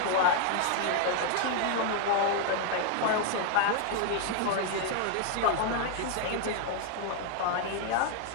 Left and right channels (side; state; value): both; different; correlation 0.00